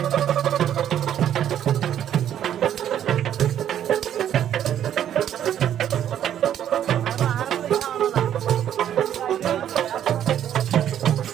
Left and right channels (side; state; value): left; quieter; 10.4 dB